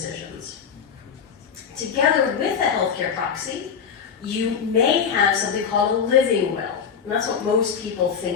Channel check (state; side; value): quieter; right; 6.9 dB